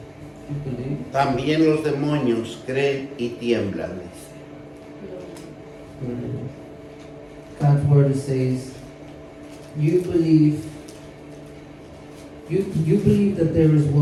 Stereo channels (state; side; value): identical; both; correlation 1.00